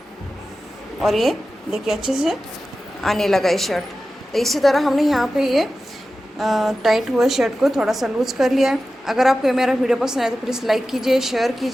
और ये देखिए अच्छे से आने लगा ये शर्ट। तो इसी तरह हमने यहाँ पे ये टाइट हुए शर्ट को थोड़ा सा लूज कर लिया है। अगर आपको मेरा वीडियो पसंद आए तो प्लीज़ लाइक कीजिए, शेयर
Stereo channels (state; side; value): normal; both; correlation 0.94